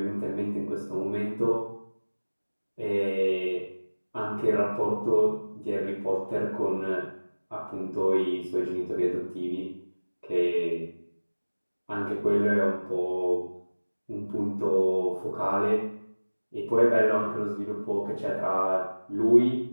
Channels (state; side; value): inverted; both; correlation -1.00